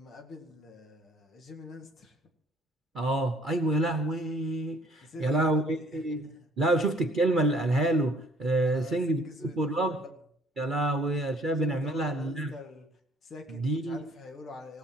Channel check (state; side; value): normal; both; correlation 0.58